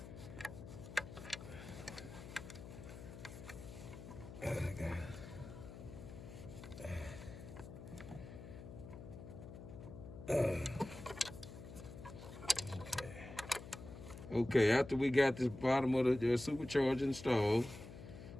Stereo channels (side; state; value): left; noise; hum, 12 dB below the sound